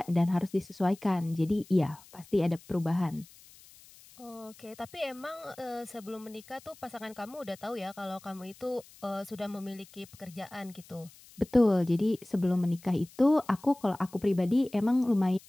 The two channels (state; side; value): noise; left; hiss, 23 dB below the sound